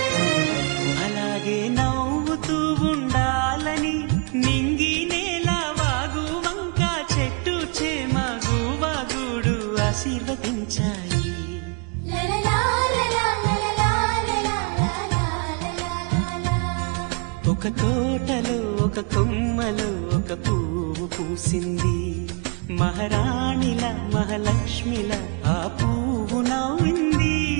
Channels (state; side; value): quieter; left; 34.4 dB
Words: అలాగే నవ్వుతూ ఉండాలని నింగి నేల వాగు వంక చెట్టు చేమ గువాగుడు ఆశీర్వదించాయి. ఒక తోటలో ఒక కొమ్మలో ఒక పువ్వు పూసింది. మహారాణిల మహాలక్ష్మిల ఆ పువ్వు నవ్వింది.